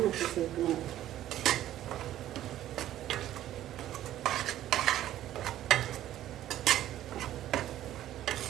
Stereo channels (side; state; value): left; quieter; 12.9 dB